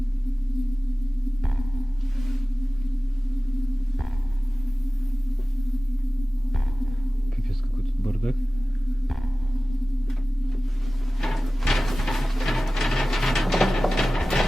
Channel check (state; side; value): normal; both; correlation 0.97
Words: Капец, какой тут бардак.